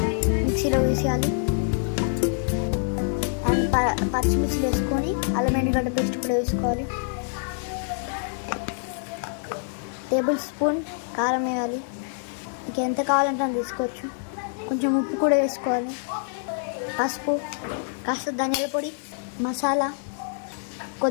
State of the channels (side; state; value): right; silent; 58 dB below the other